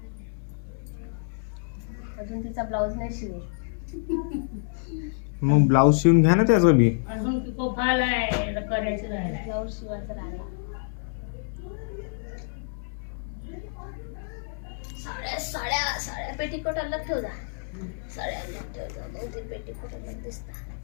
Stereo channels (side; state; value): right; silent; digital silence